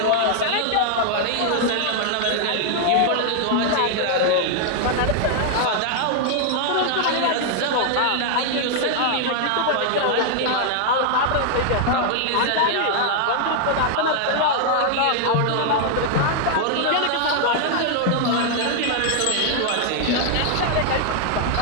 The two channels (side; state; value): both; different; correlation 0.00